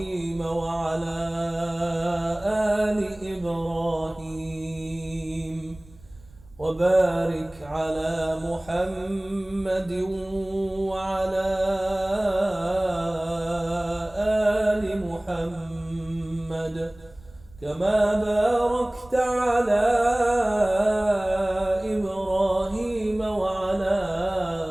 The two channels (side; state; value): right; noise; rumble, 24 dB below the sound